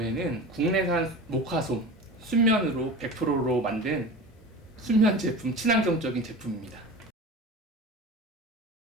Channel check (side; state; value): both; normal; correlation 0.33